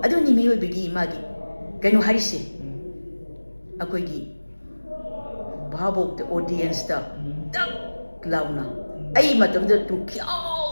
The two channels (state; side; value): inverted; both; correlation -1.00